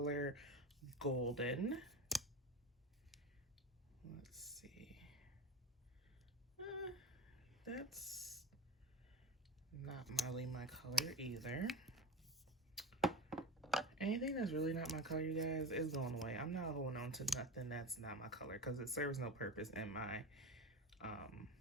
Golden. Let's see. That's not really my color either. Anything that's really not my color, you guys, is going away. I'm not holding on to nothing that's not my color because it serves no purpose in my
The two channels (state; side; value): normal; both; correlation 0.24